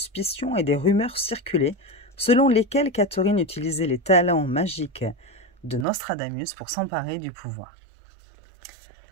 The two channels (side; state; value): left; drops out; at 5.9 s